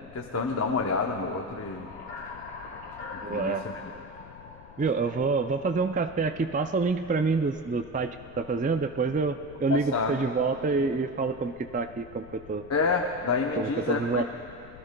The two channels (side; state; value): left; noise; rumble, 19 dB below the sound